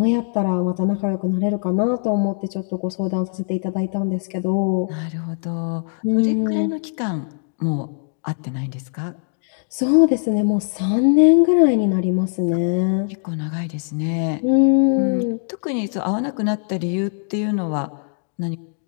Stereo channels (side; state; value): right; silent; digital silence